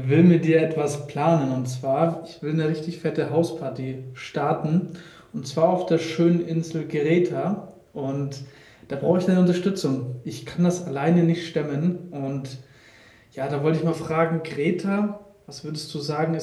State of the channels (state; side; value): identical; both; correlation 1.00